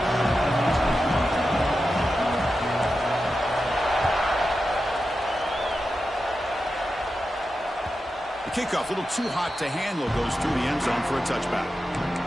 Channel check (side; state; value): both; normal; correlation 0.90